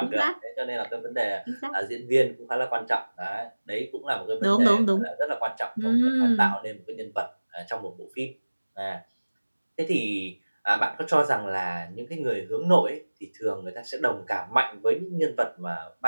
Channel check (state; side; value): inverted; both; correlation -1.00